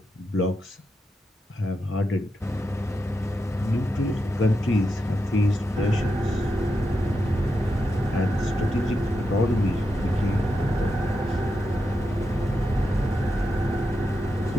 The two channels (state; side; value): normal; both; correlation 0.86